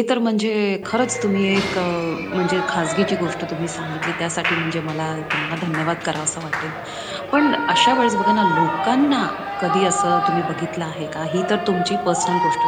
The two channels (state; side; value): identical; both; correlation 1.00